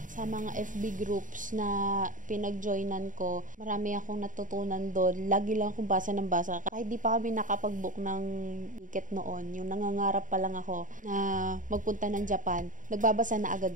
sa mga FB groups na pinag-joinan ko. Marami akong natutunan doon. Lagi lang akong basa ng basa. Kahit di pa kami nakapag-book ng ticket noon, yung nangangarap pa lang ako na magpunta ng Japan, nagbabasa na agad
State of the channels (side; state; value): left; late; 0.38 ms